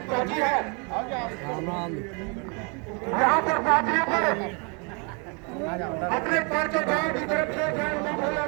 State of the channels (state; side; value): quieter; left; 33.8 dB